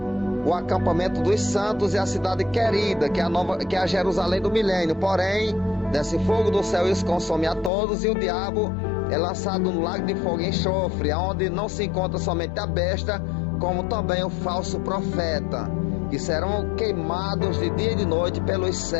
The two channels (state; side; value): drops out; right; at 7.7 s